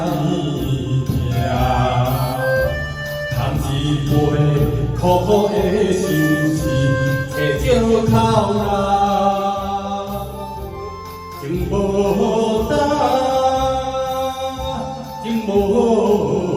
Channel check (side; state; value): both; identical; correlation 1.00